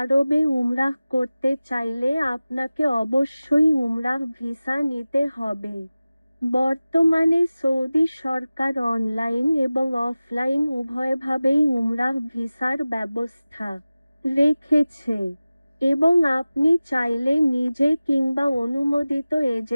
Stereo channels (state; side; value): inverted; both; correlation -0.97